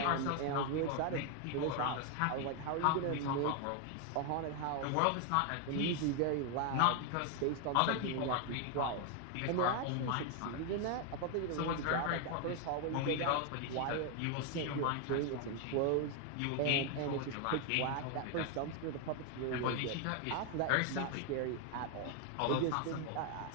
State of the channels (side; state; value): both; different; correlation 0.01